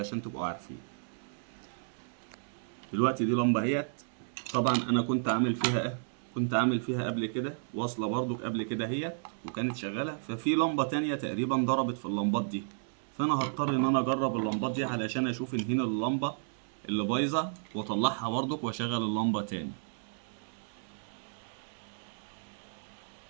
تبقوا عارفين. دلوقتي دي لمبة اهيت. طبعا انا كنت عامل فيها قبل كده واصلة برضو قبل كده هي، وكانت شغالة. ففي لمبة تانية تقريبا ضربت في اللمبات دي، فانا هضطر ان انا اجرب اللمبات دي علشان اشوف ان هنا اللمبة اللي بايظة واطلعها برضو واشغل اللمبة تاني.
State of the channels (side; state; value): left; silent; digital silence